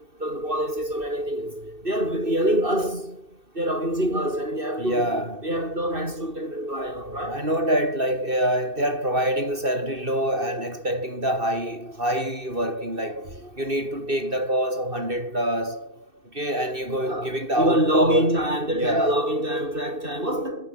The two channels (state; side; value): late; left; 2.6 ms